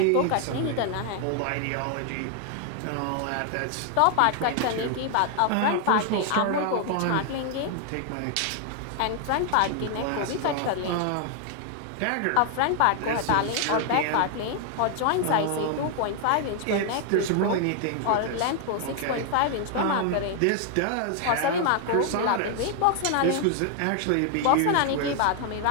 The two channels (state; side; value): different; both; correlation 0.00